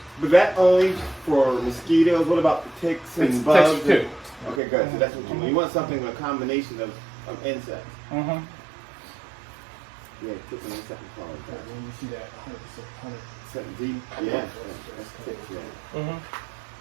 But that only for mosquitoes. What about the ticks and It's bugs? ticks too. Okay, good. So that's what you want. You want something with a combination of insects. Mm-hmm. Yeah, ticks and insect pollen. When you see that 100%, Something deep. Yeah. That's ticks. Yeah. Mm-hmm.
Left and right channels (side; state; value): left; drops out; at 4.6 s